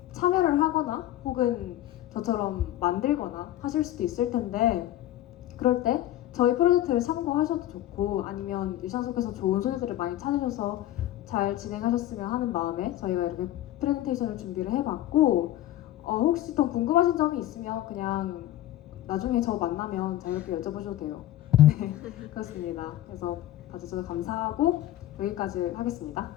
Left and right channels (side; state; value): right; quieter; 13.6 dB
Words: 참여를 하거나 혹은 저처럼 만들거나 하실 수도 있을 텐데 그럴 때 저희 프로젝트를 참고하셔도 좋고 아니면 일상 속에서 좋은 소재들을 많이 찾으셔서 잘 진행하셨으면 하는 마음에 저희가 이렇게 프레젠테이션을 준비를 해봤고 혹시 더 궁금하신 점이 있으면 그냥 나중에 저 만나면 자유롭게 여쭤보셔도 돼요. 네, 그렇습니다. 그래서 봐주셔서 감사하고 여기까지 하겠습니다.